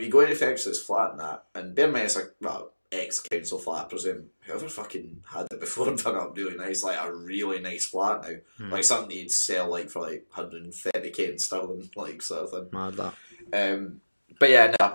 you go into Fergus's flat and that, and bear in mind it's like, well, ex-council flat, I presume. Whoever fucking had it before done up really nice, like a really nice flat now. Like something you'd sell like for like 130k in sterling, like sort of thing. Mad that. But yeah,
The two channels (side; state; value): both; inverted; correlation -1.00